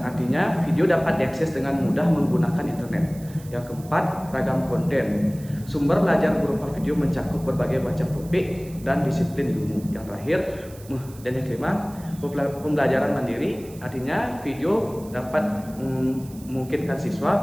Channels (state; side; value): noise; right; hiss, 21 dB below the sound